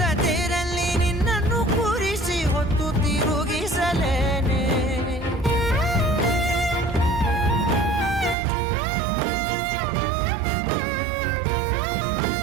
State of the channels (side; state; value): left; drops out; at 8.3 s